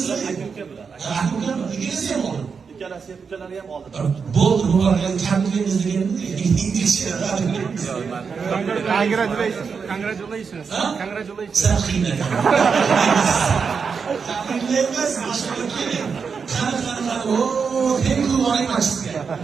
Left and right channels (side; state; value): left; quieter; 5.7 dB